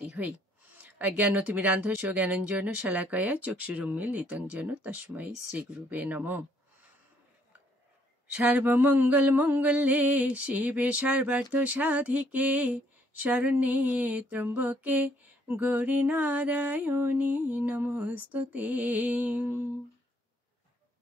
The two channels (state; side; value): normal; both; correlation 0.67